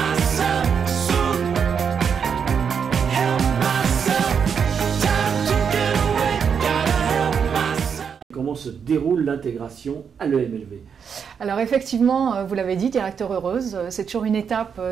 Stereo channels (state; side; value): quieter; left; 6.8 dB